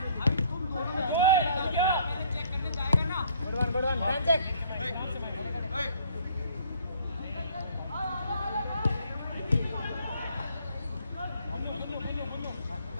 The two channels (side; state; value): both; inverted; correlation -0.60